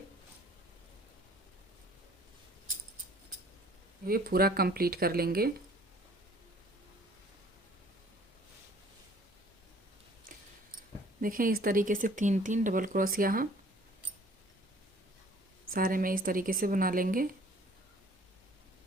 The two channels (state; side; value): normal; both; correlation 0.54